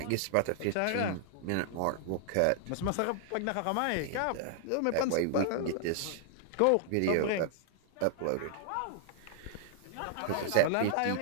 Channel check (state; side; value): different; both; correlation -0.01